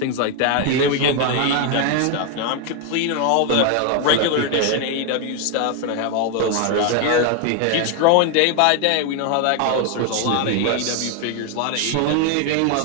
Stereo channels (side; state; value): both; different; correlation 0.01